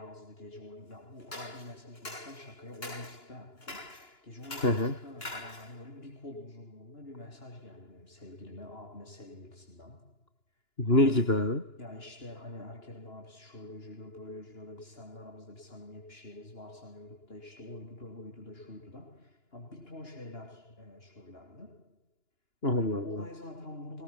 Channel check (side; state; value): right; late; 2.9 ms